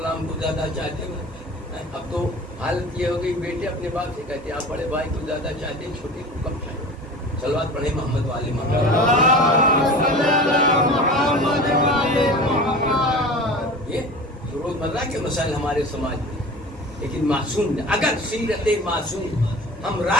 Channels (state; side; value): normal; both; correlation 0.37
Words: کو زیادہ چاہتے ہیں۔ اب تو حالت یہ ہو گئی بیٹے اپنے باپ سے کہتے ہیں آپ بڑے بھائی کو زیادہ چاہتے ہیں، چھوٹے کو کم چاہتے ہیں۔ صلوات پڑھیں محمد والے محمد۔ یہ روزمرہ کے مسائل ہمارے سماج میں، لیکن معصوم نے اگر سیرت معصوم ہم